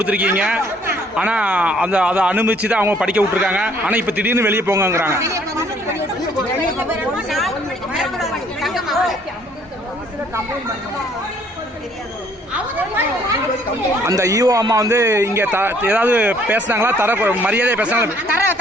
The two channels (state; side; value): normal; both; correlation 0.62